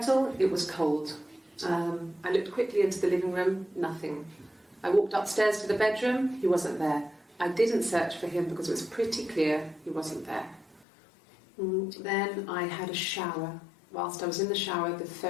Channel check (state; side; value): drops out; right; at 10.9 s